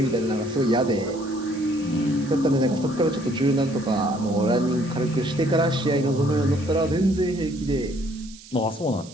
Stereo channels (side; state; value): right; noise; hiss, 20 dB below the sound